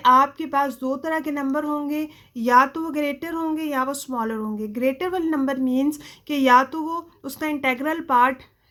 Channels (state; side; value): identical; both; correlation 1.00